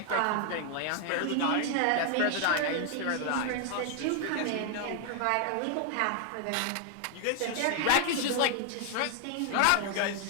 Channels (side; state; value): both; different; correlation 0.00